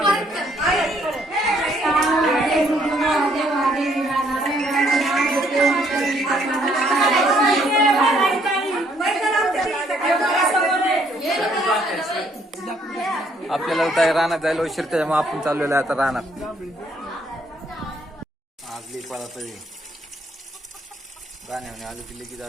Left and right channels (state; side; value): normal; both; correlation 0.67